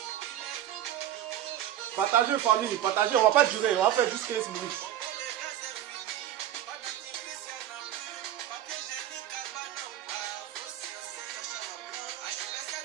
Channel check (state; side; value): quieter; left; 11.8 dB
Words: Partagez, famille, partagez. On va pas durer. On va faire juste 15 minutes.